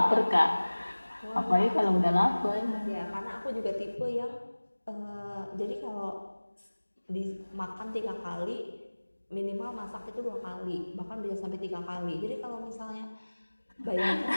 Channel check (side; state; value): both; inverted; correlation -1.00